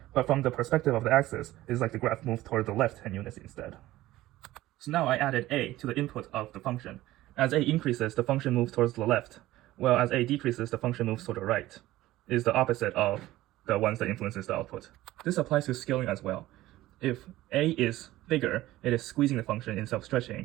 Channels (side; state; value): left; quieter; 16.3 dB